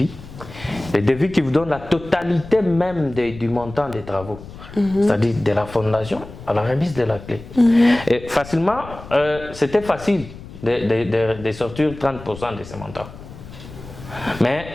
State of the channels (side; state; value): left; noise; rumble, 15 dB below the sound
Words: Les devis qui vous donnent la totalité même du montant des travaux. C'est-à-dire de la fondation à la remise de la clé. Et facilement, c'était facile de sortir 30% de ce montant. Mais